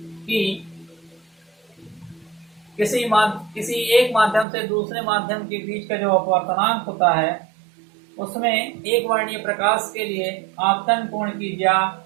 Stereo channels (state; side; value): drops out; left; at 4.5 s